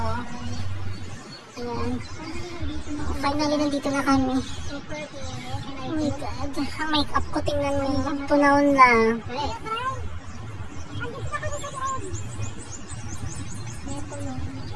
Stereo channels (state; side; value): identical; both; correlation 1.00